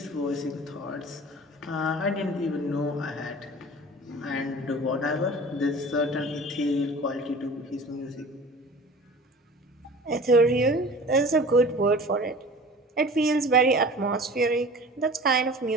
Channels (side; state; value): both; normal; correlation 0.41